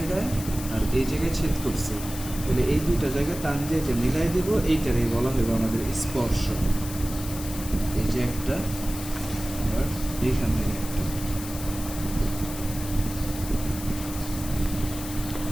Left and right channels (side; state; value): left; noise; hiss, 11 dB below the sound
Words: আর এই জায়গায় ছেদ করছে, তাহলে এই দুইটা জায়গায় টান দিয়ে যে মিলাই দেব, এইটারই বলা হইব আমাদের স্পর্শ। এই যে একটা, আবার এইখান থেকে একটা,